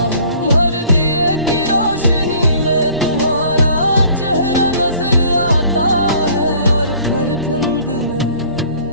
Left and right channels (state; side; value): inverted; both; correlation -0.53